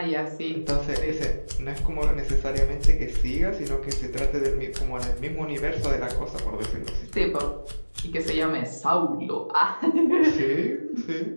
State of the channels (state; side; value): inverted; both; correlation -1.00